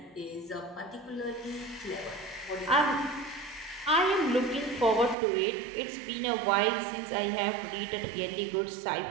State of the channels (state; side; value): drops out; left; at 5.2 s